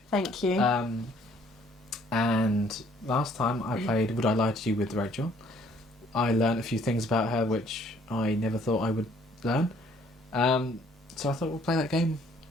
Thank you. And last time I played Would I Lie to You with Rachel. I learned a few things about her which I never thought I would learn. So I thought we'll play that game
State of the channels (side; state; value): both; normal; correlation 0.61